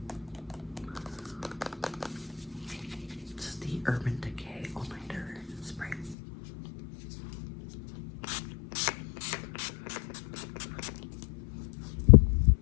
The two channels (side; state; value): right; drops out; at 6.2 s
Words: This is the Urban Decay All Nighter spray.